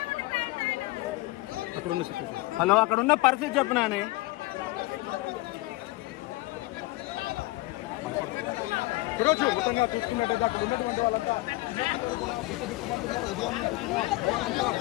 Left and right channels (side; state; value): right; quieter; 20.6 dB